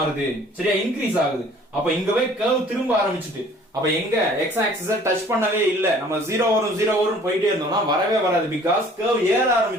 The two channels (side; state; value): both; normal; correlation 0.53